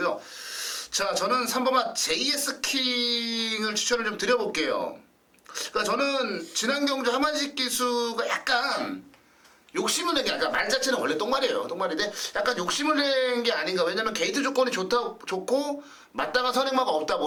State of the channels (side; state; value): both; identical; correlation 1.00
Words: 자, 저는 3번마 JS 킹을 추천을 좀 드려볼게요. 그러니까 저는 지난 경주 하만식 기수가 약간 욕심을 낸 게 아까 말 자체는 원래 똥말이에요. 똥말인데 약간 욕심을 낸 게 아닌가. 왜냐면 게이트 조건이 좋고 마땅한 선행마가 없다